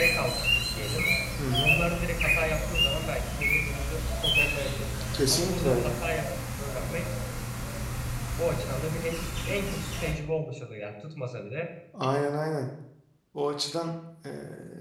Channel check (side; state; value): both; identical; correlation 1.00